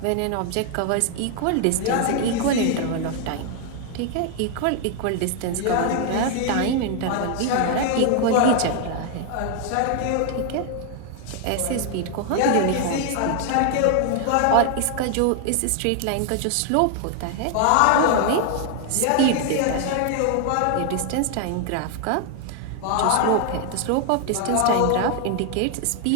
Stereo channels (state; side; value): different; both; correlation 0.00